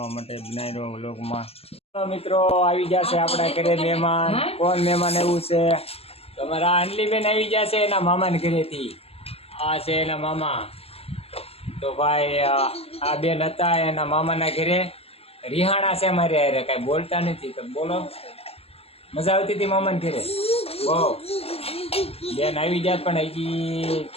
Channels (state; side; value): late; right; 0.29 ms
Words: માટે બનાવી રહ્યો વ્લોગમાં। મિત્રો આવી ગયા છે આપણા ઘરે મહેમાન। કોણ મહેમાન એવું છે? તમારા અંજલીબેન આવી ગયા છે એના મામાને ઘરેથી। આ છે એના મામા। તો ભાઈ આ બેન હતા એના મામાના ઘરે, રિહાણા છે મારે હારે, કાંઈ બોલતા નથી તો બોલો। મજા આવતી હતી મામાને ઘરે બહુ? બેન આવી ગયા પણ હજી